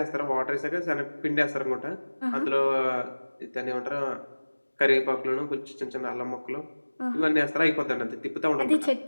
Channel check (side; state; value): both; inverted; correlation -1.00